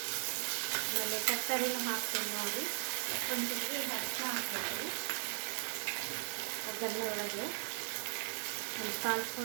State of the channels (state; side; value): silent; left; 52 dB below the other